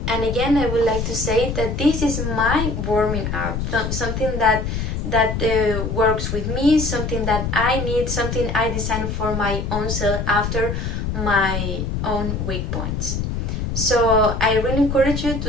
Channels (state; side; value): noise; left; rumble, 2 dB below the sound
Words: again, I would like to say that this is my warming up, something that works with me, something that I need, something I design for my own self after my own weak points. So I really encourage you to